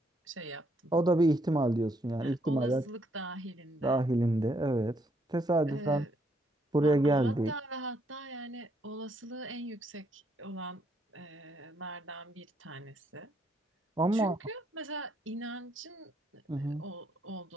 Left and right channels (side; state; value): both; normal; correlation 0.72